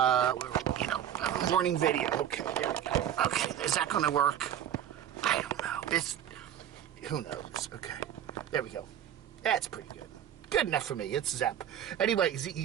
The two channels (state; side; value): quieter; left; 10.3 dB